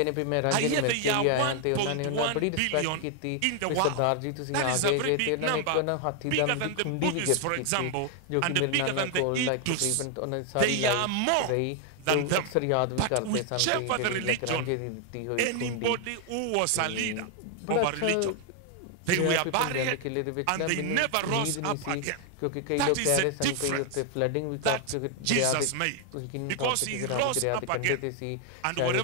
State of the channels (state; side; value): different; both; correlation 0.00